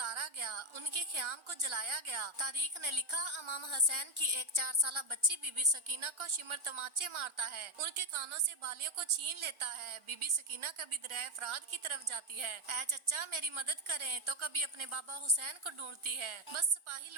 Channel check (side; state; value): left; late; 1.4 ms